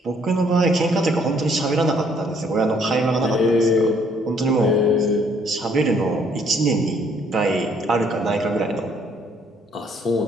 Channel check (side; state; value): both; normal; correlation 0.65